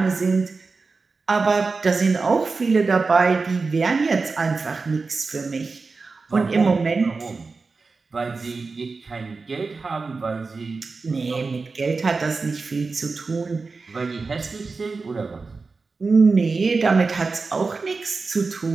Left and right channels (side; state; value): left; quieter; 4.2 dB